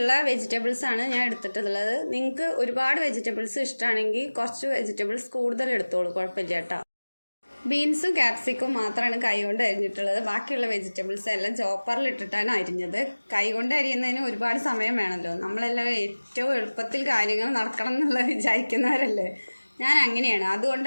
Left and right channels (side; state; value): both; inverted; correlation -1.00